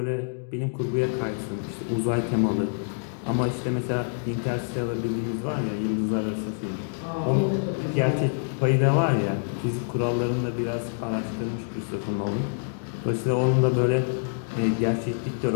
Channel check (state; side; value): silent; right; digital silence